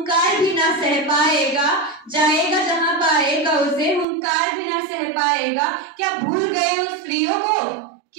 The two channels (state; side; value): drops out; left; at 4.0 s